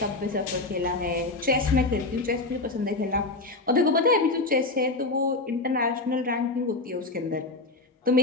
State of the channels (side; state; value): right; quieter; 3.2 dB